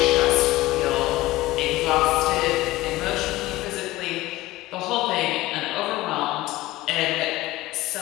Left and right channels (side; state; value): right; quieter; 17.9 dB